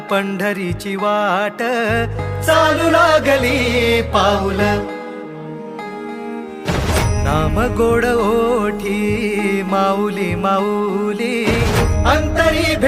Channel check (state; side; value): identical; both; correlation 1.00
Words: पंढरीची वाट चालू लागली पाऊल नाम गोड ओठी माऊली माऊली अंतरी